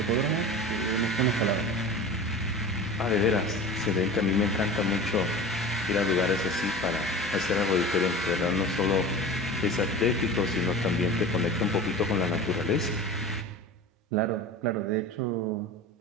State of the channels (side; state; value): both; normal; correlation 0.35